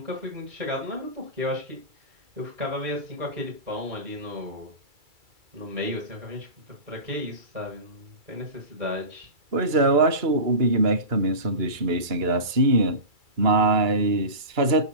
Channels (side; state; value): left; late; 2.3 ms